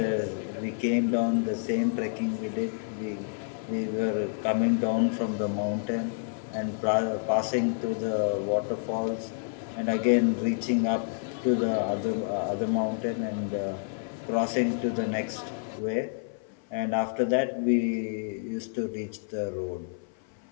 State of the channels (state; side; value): silent; right; 56 dB below the other